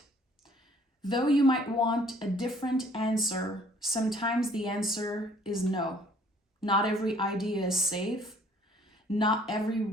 Though you might want a different answer, sometimes the answer is no. Not every idea is safe. Not every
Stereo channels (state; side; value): normal; both; correlation 0.58